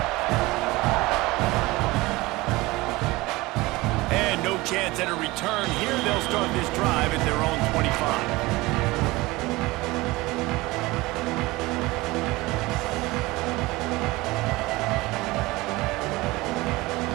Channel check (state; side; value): quieter; left; 21.0 dB